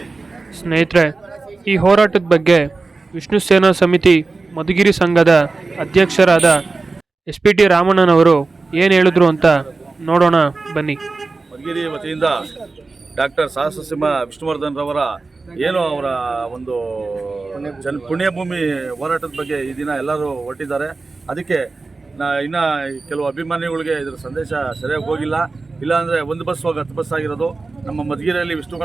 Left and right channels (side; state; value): left; quieter; 3.8 dB